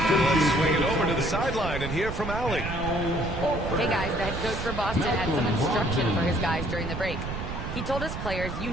Let's swing it over to the sideline and hear from Allie. Hey guys, the head coach for Boston had some instruction for his guys during the break. He told his players, you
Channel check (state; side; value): noise; right; rumble, 6 dB below the sound